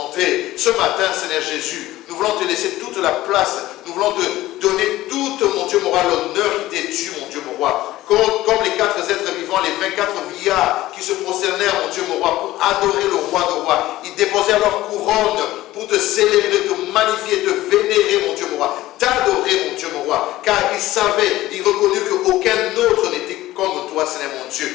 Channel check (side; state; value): right; quieter; 16.2 dB